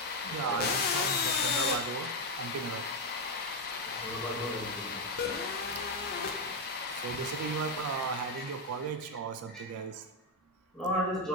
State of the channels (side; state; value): both; normal; correlation 0.05